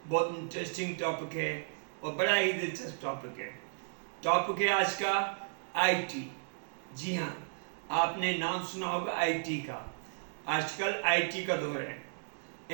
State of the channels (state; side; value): silent; left; digital silence